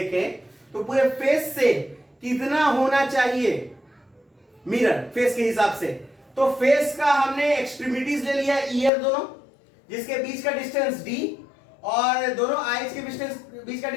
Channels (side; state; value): right; drops out; at 8.9 s